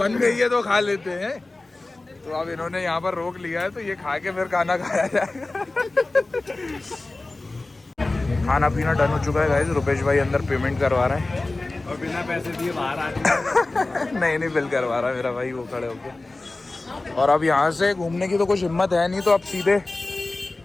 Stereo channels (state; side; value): quieter; right; 3.1 dB